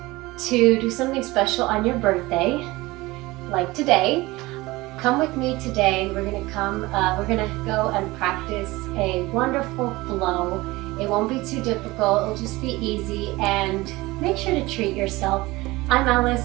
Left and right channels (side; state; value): left; quieter; 20.7 dB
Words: to do something special on your birthday, like today, come with me today. We're gonna go and practice a wonderful flow. It won't be too difficult, it'll just be easy, and make sure to treat yourself. I'm